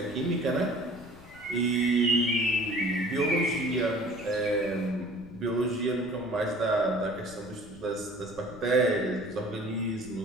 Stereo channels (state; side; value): noise; left; rumble, 21 dB below the sound